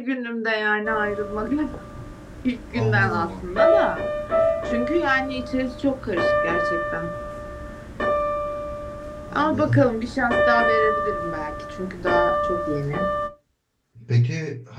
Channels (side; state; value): both; identical; correlation 1.00